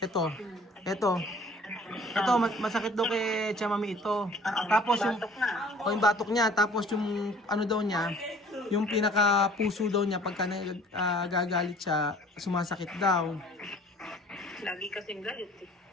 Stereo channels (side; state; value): both; normal; correlation 0.52